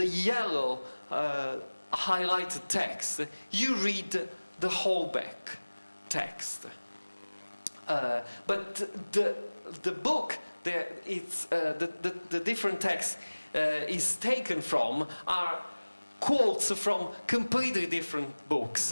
yellow highlighted text, you read the Houellebecq text. But the book, the different text is taken from are quotes from completely different books,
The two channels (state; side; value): inverted; both; correlation -1.00